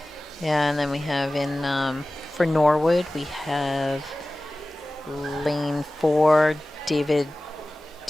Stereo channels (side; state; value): both; normal; correlation 0.97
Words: Yeah, and then we have in for Norwood we have lane 4 David